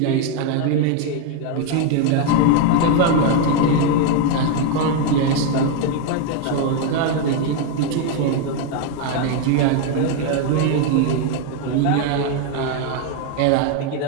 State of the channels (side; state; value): both; different; correlation 0.01